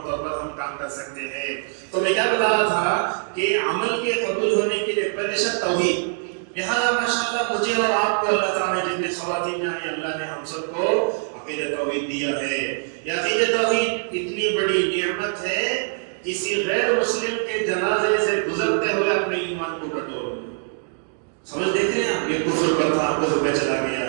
طور پر ہم کام کر سکتے ہیں. تو میں کیا بتا رہا تھا کہ عمل کے قبول ہونے کے لیے پہلے شرط توحید. لہٰذا ماشاءاللہ مجھے اور آپ کو اللہ تعالیٰ نے جتنے خواتین ہیں اللہ نے ہم سب کو عقیدہ توحید دیا ہے. یہ عقیدہ توحید اتنی بڑی نعمت ہے کسی غیر مسلم کے جنازے سے گزرتے ہوئے اپنے ایمان کو ٹٹول سمجھ دیکھتے ہیں آپ یہ کفر پر تھا کفر پہ چلا گیا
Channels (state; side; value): silent; left; 62 dB below the other